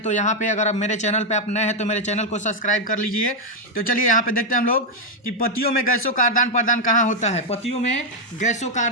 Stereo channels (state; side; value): normal; both; correlation 0.00